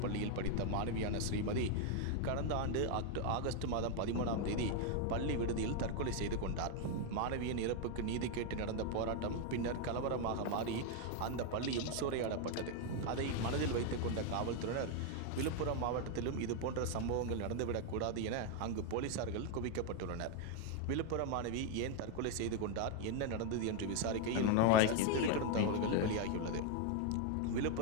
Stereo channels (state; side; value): different; both; correlation 0.01